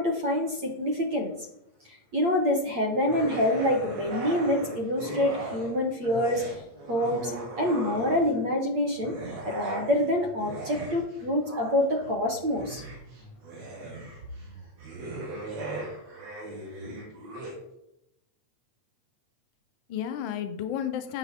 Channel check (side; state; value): left; late; 8.6 ms